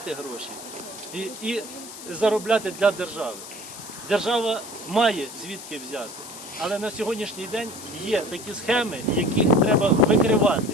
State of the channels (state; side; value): noise; left; hiss, 13 dB below the sound